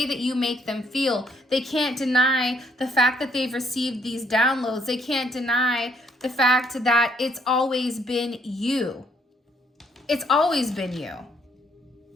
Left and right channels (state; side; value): normal; both; correlation 0.68